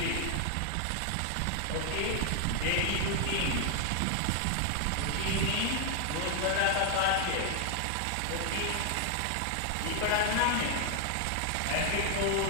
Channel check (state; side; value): different; both; correlation 0.00